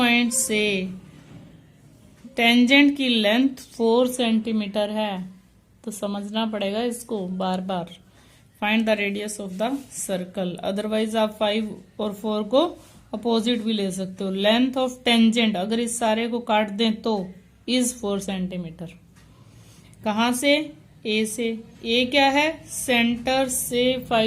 से टेंजेंट की लेंथ 4 सेंटीमीटर है। तो समझना पड़ेगा इसको बार बार। Find the radius of the circle. Otherwise आप 5 और 4 को अपोजिट भी ले सकते हो। लेंथ ऑफ टेंजेंट अगर इस सारे को काट दें तो इज 4 सेंटीमीटर। कहां से? ए से। ए क्या है? सेंटर से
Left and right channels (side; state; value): both; identical; correlation 1.00